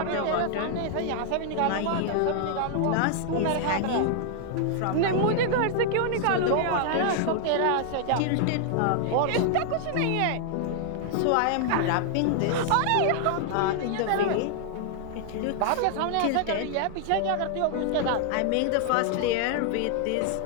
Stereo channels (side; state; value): both; different; correlation 0.00